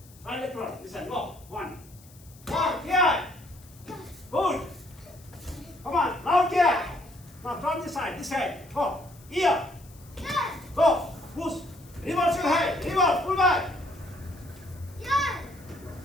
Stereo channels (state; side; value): noise; left; hiss, 24 dB below the sound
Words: Right leg front. This side. Go. 1. Good. Come on. Loud Now from this side. Go. Go. Push. Reverse your head. Pull back.